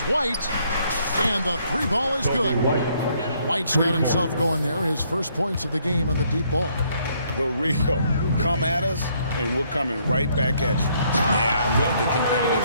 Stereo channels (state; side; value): inverted; both; correlation -0.68